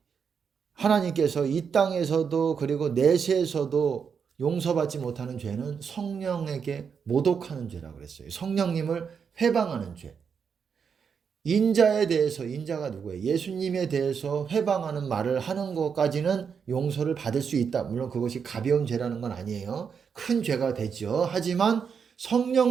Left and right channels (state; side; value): quieter; left; 6.5 dB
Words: 하나님께서 이 땅에서도 그리고 내세에서도 용서받지 못하는 죄는 성령에게 모독하는 죄라고 그랬어요. 성령님을 회방하는 죄. 인자에 대해서, 인자가 누구예요? 예수님에 대해서 회방하는 말을 하는 것까지는 용서를 받을 수 있다. 물론 그것이 가벼운 죄라는 건 아니에요. 큰 죄가 되죠. 하지만